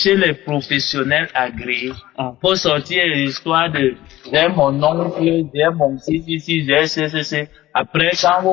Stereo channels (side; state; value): right; quieter; 15.6 dB